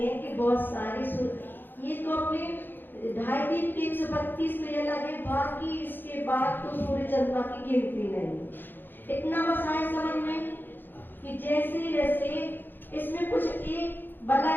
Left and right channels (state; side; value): late; right; 0.094 ms